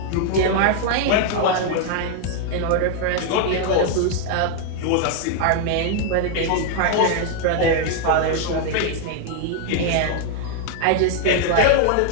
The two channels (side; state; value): both; different; correlation 0.00